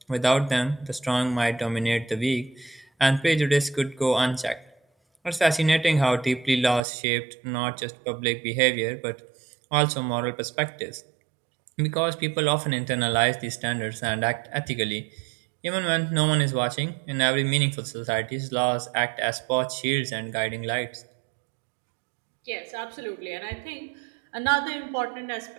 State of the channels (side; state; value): left; drops out; at 6.8 s